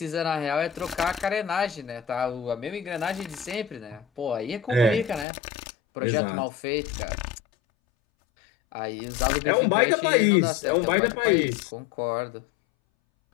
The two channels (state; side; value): drops out; right; at 5.2 s